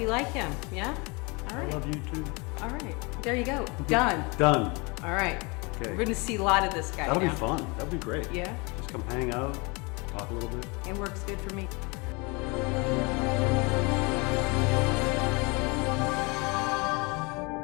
like him, yeah? All I right. love you too. All right. There you go. Done. Done. All right. Okay. We're going to see a lot of this guy That'll now. be fun. That'll be great. Yeah? Just come hang out, talk a little bit. It works good for me.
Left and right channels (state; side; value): quieter; right; 28.5 dB